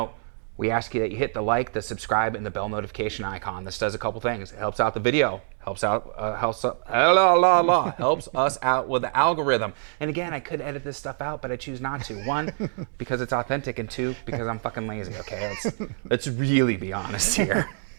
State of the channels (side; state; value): left; silent; digital silence